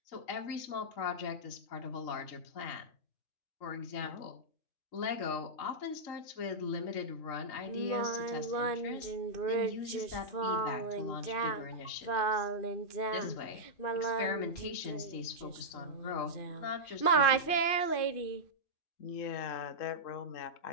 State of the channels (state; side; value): late; right; 2.5 ms